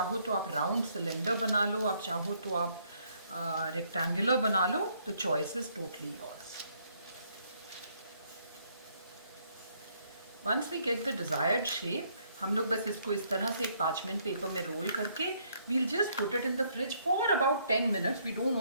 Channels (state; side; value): inverted; both; correlation -0.69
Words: तो आप राउंड सिलेंडर बना लो, आप चाहो तो आप रेक्टेंगुलर बना लो. The choice is totally yours. Once we get the desired shape, हम लोग बस इसको इस तरह से एक पार्चमेंट पेपर में रोल करके we'll just put it in the fridge for about 10 minutes. We don't